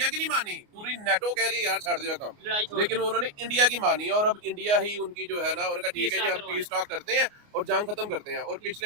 की नहीं मानी, पूरी नेटो कह रही है यार छाड़ दिया काम, लेकिन उन्होंने इंडिया की मानी और अब इंडिया ही उनकी जो है ना, उनका ठीक है जी हम पीस टॉक करते हैं और जंग खत्म करते हैं। और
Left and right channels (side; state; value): left; late; 29 ms